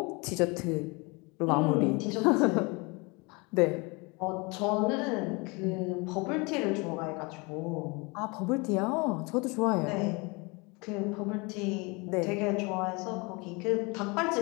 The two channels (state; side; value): quieter; right; 27.9 dB